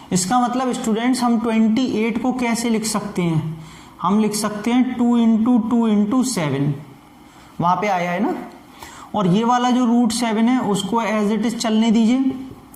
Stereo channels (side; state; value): both; identical; correlation 1.00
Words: इसका मतलब स्टूडेंट्स हम 28 को कैसे लिख सकते हैं, हम लिख सकते हैं 2 इंटू 2 इंटू 7, वहां पे आया है ना। और ये वाला जो √7 है उसको एज इट इज चलने दीजिए।